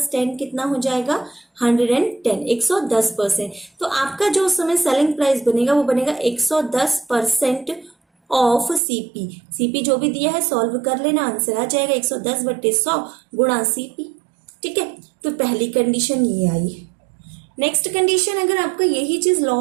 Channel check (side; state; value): left; drops out; at 8.8 s